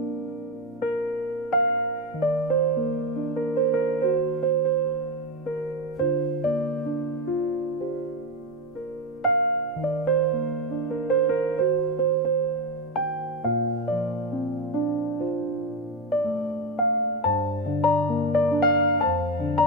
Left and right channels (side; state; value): both; normal; correlation 0.14